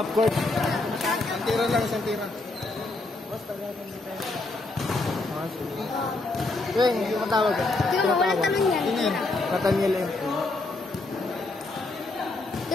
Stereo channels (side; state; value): right; quieter; 3.2 dB